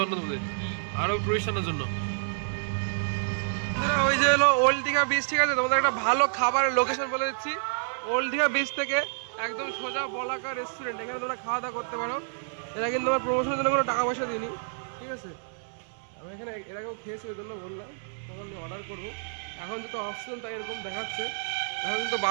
আরো টুরিস্টারদের জন্য। ওই যে হলো ওল্ড দীঘা বিচ, ঠিক আছে? তোমাদের একটা ভালো খাবারের লোকেশন বলে দিচ্ছি। ওল্ড দীঘা বিচ থেকে একদম সোজা বলাকা রেস্টুরেন্ট, এখানে তোমরা খাওয়া দাওয়া করতে পারো। এরা কিন্তু আমার প্রমোশনের জন্য কোনো টাকা পয়সা দিইনি, ঠিক আছে? আমি এখানে এর আগেও খেয়েছি, ওই জন্য বললাম, তখন আমি অর্ডার করবো। এখন যেহেতু অপশন তাই এরকম দেখাচ্ছে। এখন কিন্তু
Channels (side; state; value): left; silent; digital silence